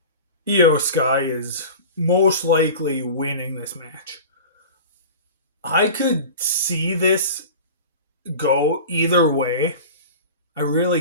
Io Sky is most likely winning this match. I could see this go either way. I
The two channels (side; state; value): both; inverted; correlation -0.35